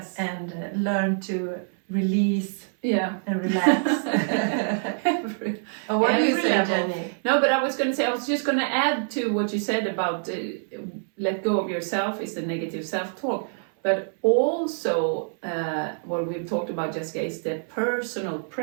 and learn to release and relax. What do you say, Jenny? No, but I was just going to add to what you said about let go of yourself is the negative self-talk, but also what we've talked about, Jessica, is the personal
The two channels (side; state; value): left; silent; 61 dB below the other